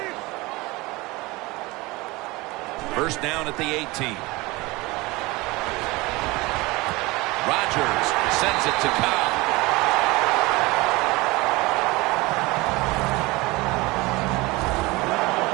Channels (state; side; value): quieter; left; 22.5 dB